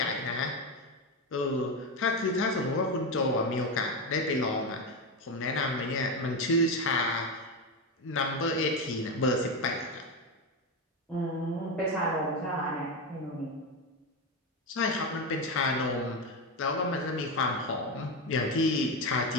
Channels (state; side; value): normal; both; correlation 0.13